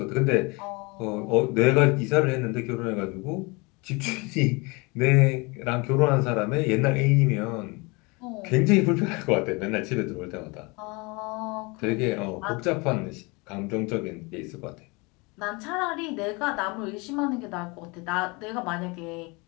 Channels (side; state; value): right; quieter; 27.4 dB